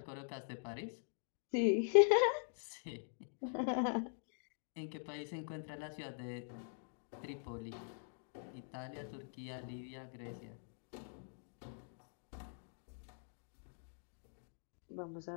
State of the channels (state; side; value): silent; right; digital silence